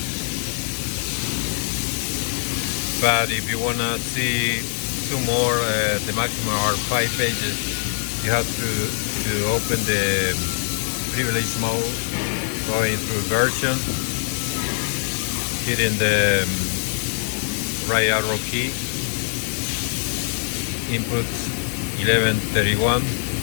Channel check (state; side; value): silent; right; digital silence